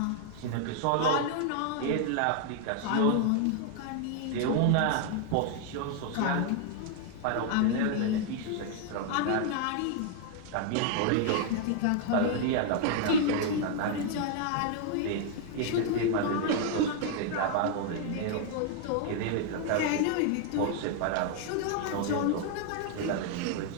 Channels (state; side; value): different; both; correlation 0.00